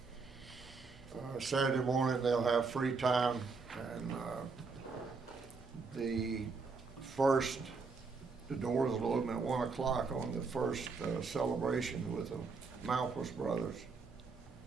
Saturday morning they'll have free time, and the doors will open at 1 o'clock on the first celebration with the Malpas brothers,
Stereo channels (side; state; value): left; quieter; 4.5 dB